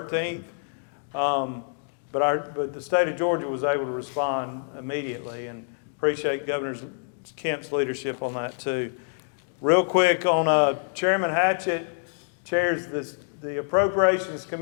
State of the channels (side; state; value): right; silent; digital silence